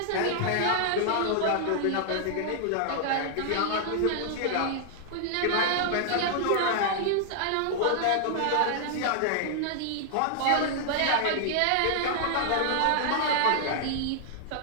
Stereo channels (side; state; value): both; different; correlation -0.01